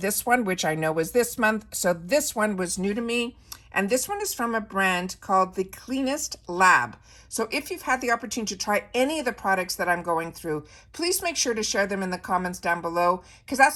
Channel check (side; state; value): both; identical; correlation 1.00